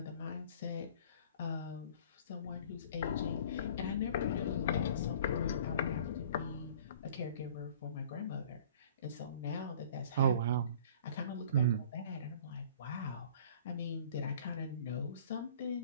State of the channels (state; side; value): inverted; both; correlation -0.48